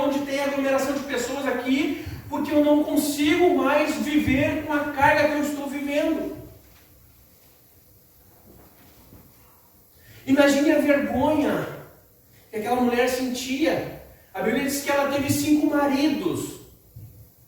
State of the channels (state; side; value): identical; both; correlation 1.00